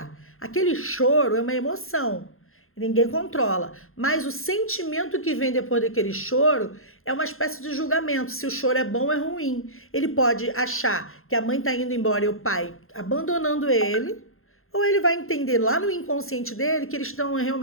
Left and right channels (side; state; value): right; late; 0.61 ms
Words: Aquele choro é uma emoção. Ninguém controla. Mas o sentimento que vem depois daquele choro é uma espécie de julgamento. Se o choro é bom ou é ruim. Ele pode achar que a mãe está indo embora e o pai abandonando ele. Ou ele vai entender lá no inconsciente dele que eles estão